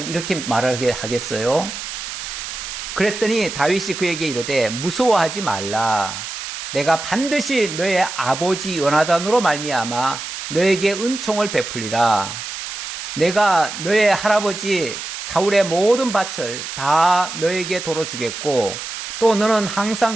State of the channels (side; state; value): right; noise; hiss, 8 dB below the sound